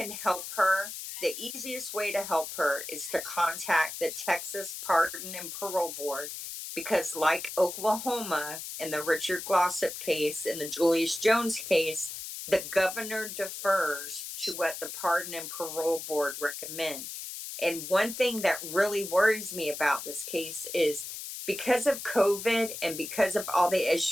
help her, the easiest way to help her is to contact the Texas Pardon and Parole Board, because like Oklahoma in the Richard Glossop case and the Julius Jones case, the governor defers to what the Pardon and Parole Board recommend. And one thing that really worries me about this case is because of COVID and because of all the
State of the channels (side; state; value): left; noise; hiss, 8 dB below the sound